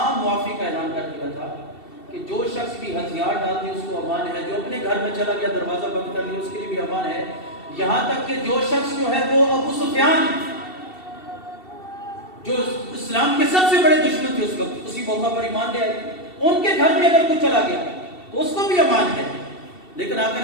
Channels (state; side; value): late; right; 2.7 ms